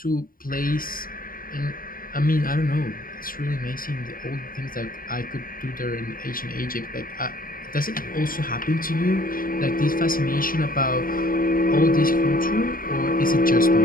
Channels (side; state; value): right; late; 0.41 ms